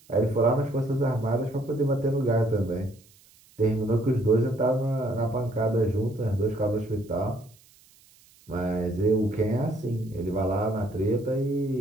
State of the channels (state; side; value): noise; right; hiss, 28 dB below the sound